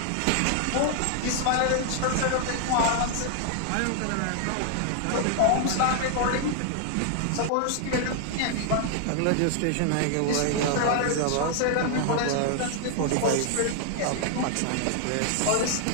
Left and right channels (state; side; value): different; both; correlation 0.00